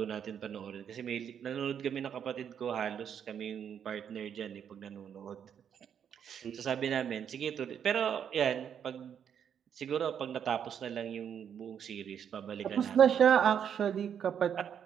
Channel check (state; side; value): quieter; left; 8.3 dB